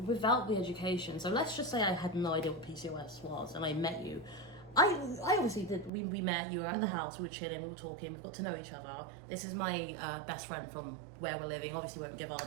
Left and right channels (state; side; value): drops out; left; at 5.9 s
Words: the education, so let's just say I had no idea what PCOS was and I met you. I obviously did, we met, you were at the house, we were chilling, we were talking, we got to know each other. This is my best friend from where we're living, obviously we won't give our